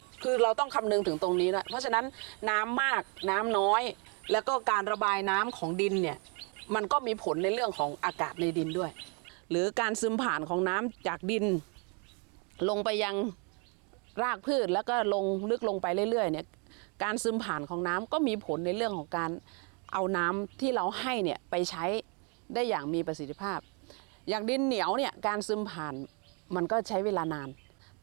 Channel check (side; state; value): left; quieter; 35.7 dB